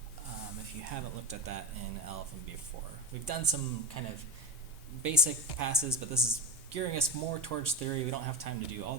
if you haven't looked at that in LLVM before. We've done some kind of basic passes, but this is gearing us more towards theory. We don't have time to do all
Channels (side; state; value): both; normal; correlation 0.23